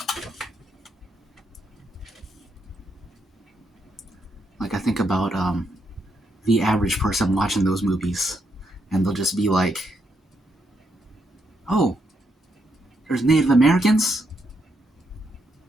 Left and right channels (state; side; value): normal; both; correlation 0.78